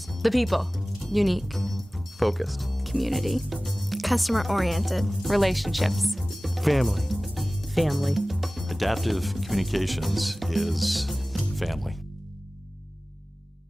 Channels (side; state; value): both; normal; correlation 0.98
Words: The people. Unique. Focused. Community. Customer-oriented. Relationships. Family. Family. Adaptive Communications is family.